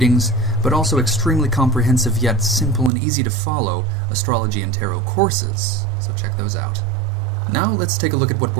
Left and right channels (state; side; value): drops out; left; at 2.9 s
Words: but also extremely comprehensive yet simple and easy to follow astrology and tarot courses, so check those out. Now let's take a look at what